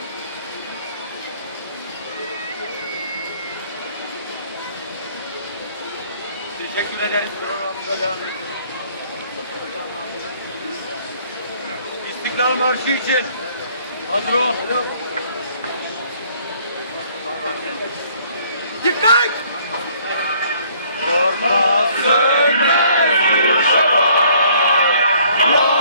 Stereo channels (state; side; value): inverted; both; correlation -0.61